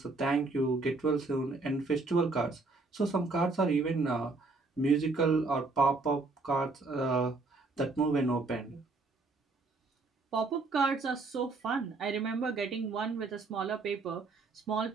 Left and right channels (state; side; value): quieter; left; 3.7 dB